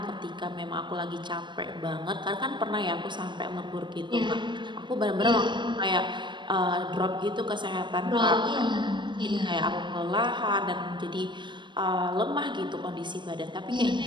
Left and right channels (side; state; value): left; late; 0.22 ms